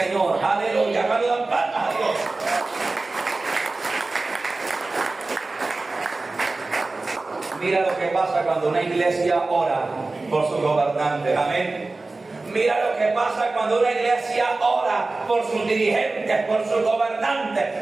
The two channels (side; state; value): left; quieter; 3.4 dB